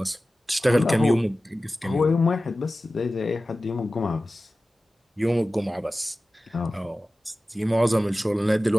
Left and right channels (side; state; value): both; normal; correlation 0.95